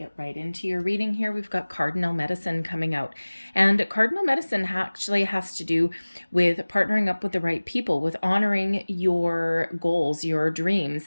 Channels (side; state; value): both; inverted; correlation -1.00